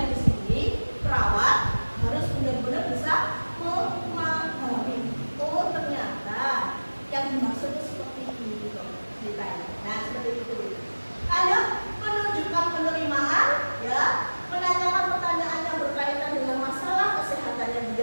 di sini perawat harus benar-benar bisa memahami. Oh ternyata yang dimaksud itu seperti ini loh ceritanya. Nah seperti itu. Ayo menunjukkan penerimaan, ya, menanyakan pertanyaan yang berkaitan dengan masalah kesehatannya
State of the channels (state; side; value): inverted; both; correlation -1.00